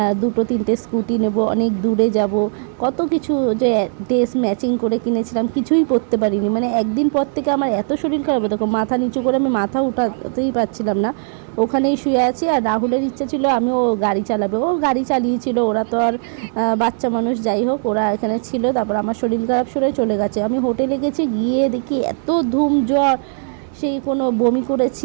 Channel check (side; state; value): left; silent; 62 dB below the other